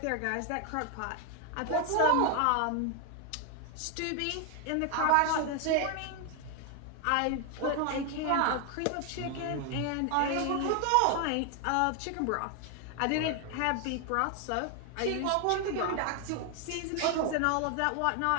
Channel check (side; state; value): both; different; correlation 0.01